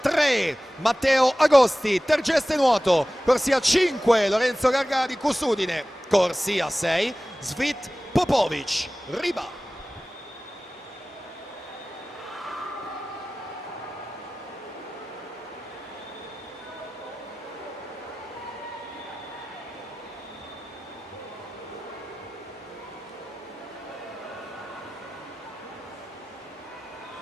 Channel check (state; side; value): normal; both; correlation 0.97